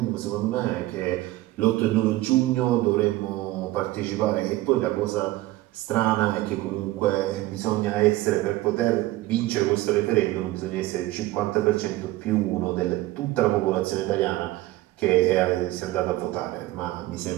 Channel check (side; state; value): left; quieter; 17.5 dB